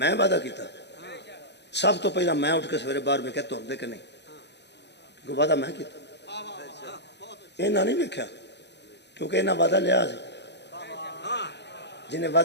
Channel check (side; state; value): right; late; 0.50 ms